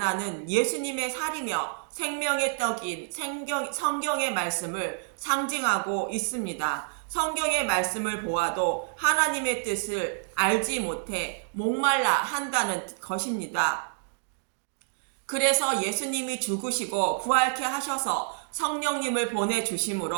예수님의 살이며 생명의 떡인 성경의 말씀을 상징하고 있습니다. 성경의 말씀을 보아도 하나님의 뜻을 알지 못해 목말라 한다는 것입니다. 그래서 예수님이 죽으시고 부활케 하셔서 성령님을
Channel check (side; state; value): left; silent; digital silence